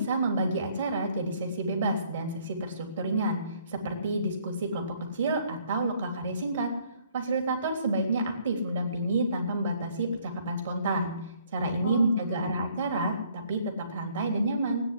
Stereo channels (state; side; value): inverted; both; correlation -0.63